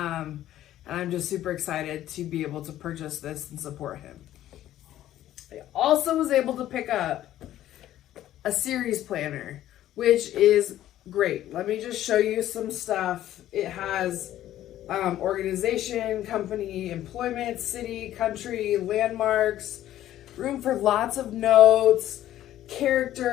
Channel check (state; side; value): quieter; right; 13.0 dB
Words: I'm just super excited to be able to purchase this and support him. I also was able to pick up a series planner, which is great. Let me just show you some stuff. It has organization, company, employment, city, country, landmarks, room for lots of notes,